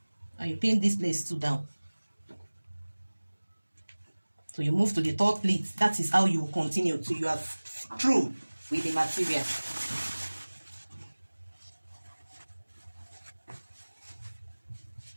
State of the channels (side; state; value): both; inverted; correlation -1.00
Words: And you pin this place too down. So you move to the third pleat. That is how you will continue till you are through with the material.